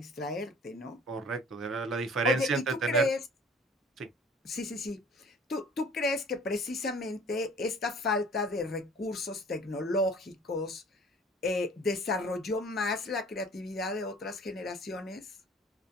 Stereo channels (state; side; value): normal; both; correlation 0.49